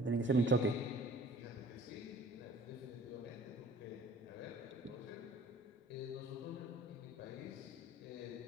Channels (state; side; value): normal; both; correlation 0.50